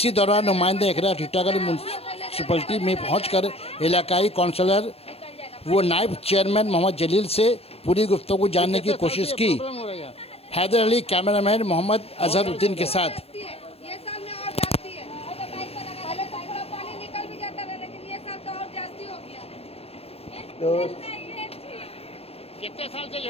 दौरान नुमाइंदा इकरा टीटागढ़ म्यूनसिपलिटी में पहुंचकर इलाकाई काउंसलर वो नायब चेयरमैन मोहम्मद जलील से पूरी गुफ्तगू जानने की कोशिश की। हैदर अली कैमरामैन मोहम्मद अजहरुद्दीन के साथ। कितने साल से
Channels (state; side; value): late; right; 0.29 ms